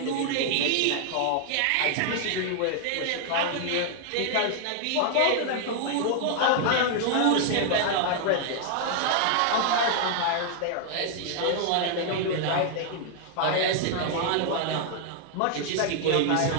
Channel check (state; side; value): different; both; correlation 0.00